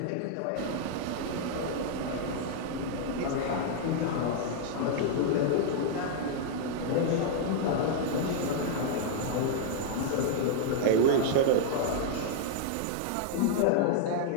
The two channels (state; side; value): different; both; correlation -0.01